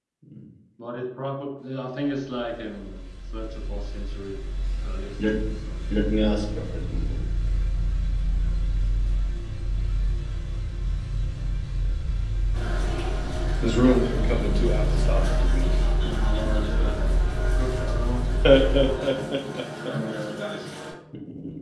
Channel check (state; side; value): identical; both; correlation 1.00